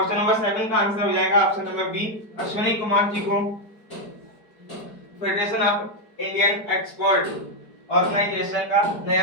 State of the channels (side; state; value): right; late; 4.8 ms